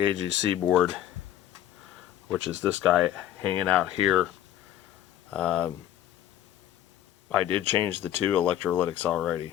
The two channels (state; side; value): quieter; right; 11.8 dB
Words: board, which is this guy hanging out here. I did change the two electrolytics